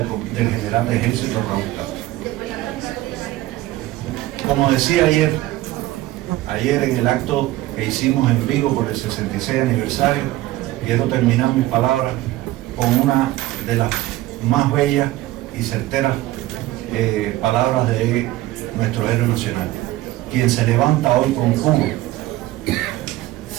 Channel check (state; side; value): quieter; left; 16.5 dB